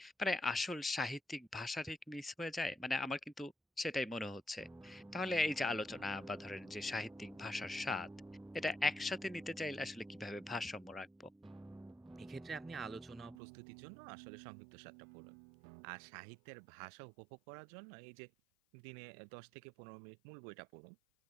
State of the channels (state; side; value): drops out; left; at 13.4 s